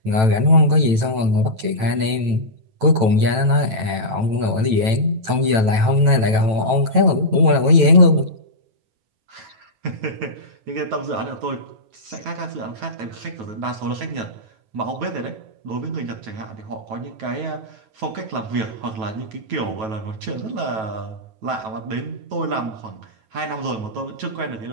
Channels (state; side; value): late; left; 9.1 ms